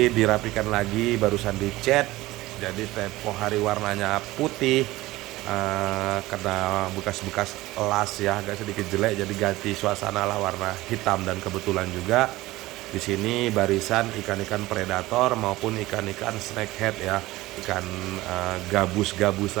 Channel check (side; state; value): left; quieter; 18.4 dB